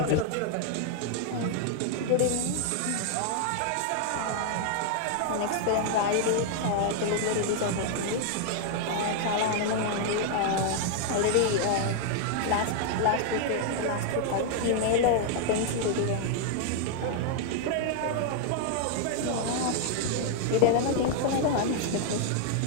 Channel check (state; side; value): different; both; correlation 0.00